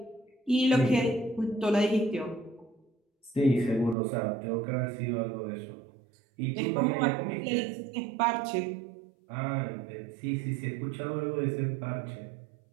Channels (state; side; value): drops out; left; at 4.0 s